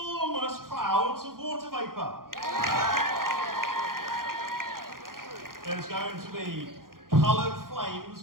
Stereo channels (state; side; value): late; left; 0.91 ms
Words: clouds of water vapour. There's going to be coloured flames